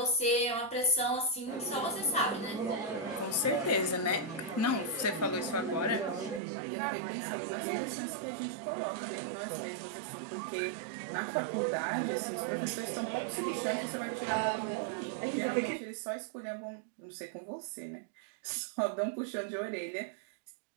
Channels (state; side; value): drops out; left; at 6.4 s